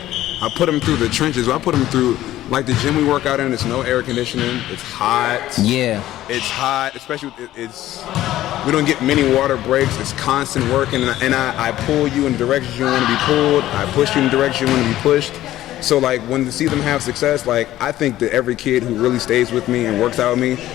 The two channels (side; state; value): right; quieter; 14.2 dB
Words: put them through the trenches. I put them through. Like the gym we work out in, it's no air conditioning. It's hot. Yeah. It's hot, especially we don't get many water breaks. It's constant working, and I pull you in the direction you want to be pulled. I push you in the direction you want to be pushed. So like when to see them have success, like I think that every kid who really stays with me and works out with me,